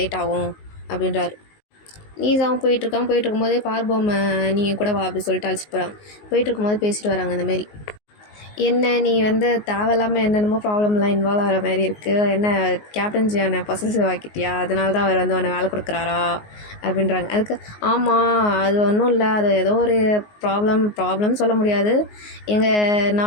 லேட் ஆகும் அப்படின்றாரு. லீசாவும் போயிட்டு இருக்கும்போதே பார்போம் நீங்கள் கூட வா அப்படி சொல்லிட்டு அழைச்சிட்டு போகிறாங்க. போயிட்டு இருக்கும்போது பேசிட்டு வராங்க இந்தமாரி. என்ன நீ வந்து தேவையில்லாமல் என்னென்னமோ ப்ராப்ளம்லாம் இன்வால்வ் ஆகிற மாதிரி இருக்குது. என்ன கேப்டன் ஜியானை பொசசிவ் ஆக்கிட்டியா? அதனால தான் அவர் வந்து உன்னை வேலை கொடுக்குறாரா அப்படின்றாங்க. அதுக்கு ஆமாம், அது ஒன்றும் இல்லை, அது ஏதோ ஒரு ப்ராப்ளம் சொல்ல முடியாது.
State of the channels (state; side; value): late; right; 19 ms